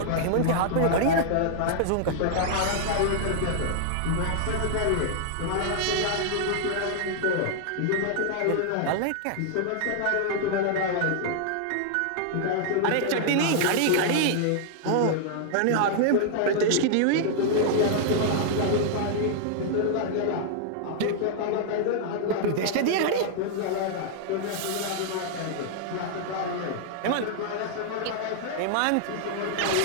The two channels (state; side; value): different; both; correlation -0.01